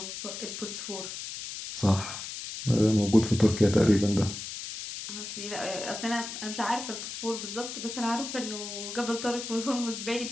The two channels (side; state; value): left; noise; hiss, 8 dB below the sound